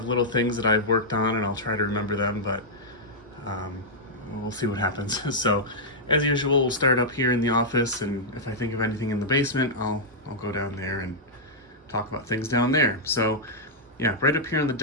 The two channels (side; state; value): both; normal; correlation -0.08